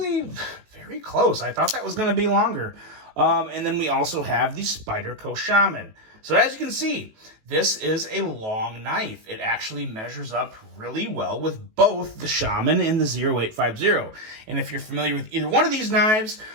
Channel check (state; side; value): late; left; 18 ms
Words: very close. I thought that was going to be longer. And then we also have the Spyderco Shaman. So as you can see, this is a long knife. It actually measures up really well with both the Shaman and the 0850. And if you're familiar with either one of these knives,